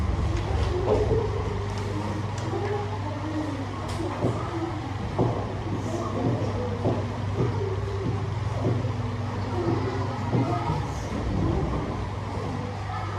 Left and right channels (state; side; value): identical; both; correlation 1.00